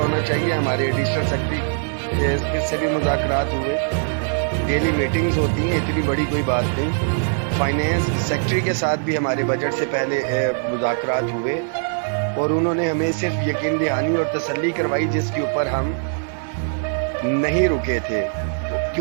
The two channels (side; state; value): left; silent; digital silence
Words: چاہیے ہمارے ایڈیشنل سیکرٹری سے بھی مذاکرات ہوئے، ڈیلی میٹنگز ہوتی ہیں، اتنی بڑی کوئی بات نہیں۔ فائنینس سیکرٹری کے ساتھ بھی ہمارے بجٹ سے پہلے مذاکرات ہوئے، اور انہوں نے ہمیں صرف یقین دہانی اور تسلی کروائی، جس کے اوپر ہم نہیں رکے تھے،